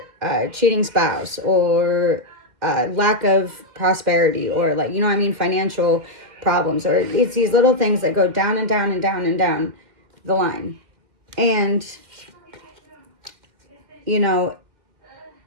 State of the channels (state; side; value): late; left; 2.1 ms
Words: cheating spouse, or lack of prosperity, or like, you know what I mean, financial problems, or it's these little things that go down and down and down and down the line. And you know,